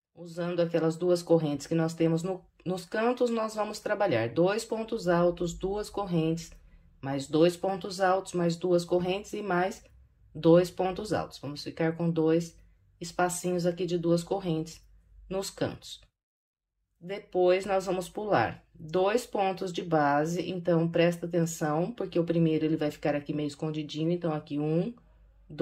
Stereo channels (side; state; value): both; identical; correlation 1.00